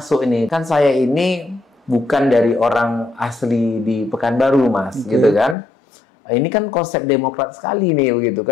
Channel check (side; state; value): right; drops out; at 5.6 s